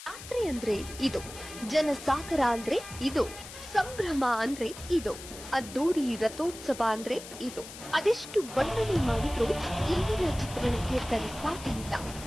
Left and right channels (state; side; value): noise; left; hiss, 14 dB below the sound